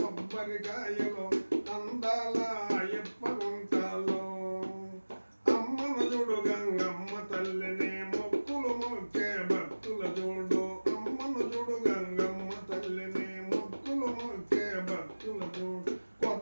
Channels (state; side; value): inverted; both; correlation -1.00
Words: అందాల ఎప్ప గుంటలో అమ్మను చూడు గంగమ్మ తల్లిని మొక్కులు మొక్కే భక్తుల చూడు అమ్మను చూడు గంగమ్మ తల్లిని మొక్కులు మొక్కే భక్తుల చూడు